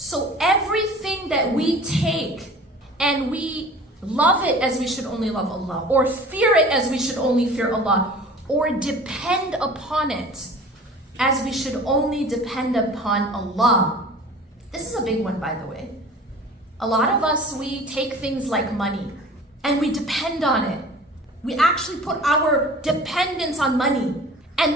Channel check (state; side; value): normal; both; correlation 0.44